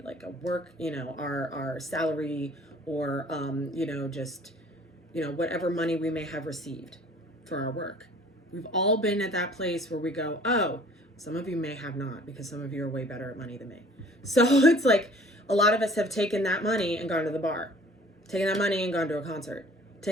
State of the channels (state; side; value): normal; both; correlation 0.51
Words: a work, our salary, or just whatever money we may have received for our work. We've all been at that place where we go, oh, some of you may have not, because some of you are way better at money than me. So it's like a lot of us have taken that money and gone to the bar, taken that money and gone to a concert,